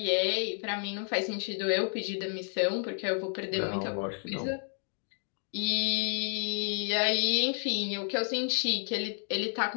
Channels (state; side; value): silent; right; 57 dB below the other